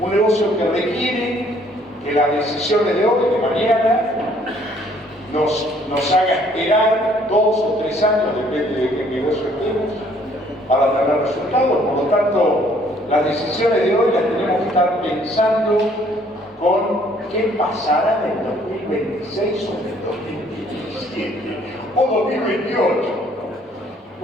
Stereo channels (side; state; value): both; normal; correlation 0.61